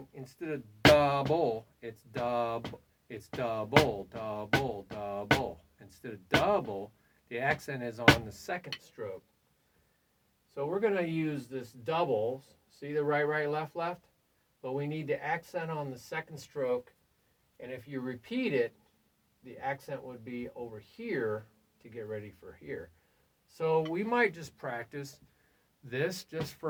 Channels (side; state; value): both; identical; correlation 1.00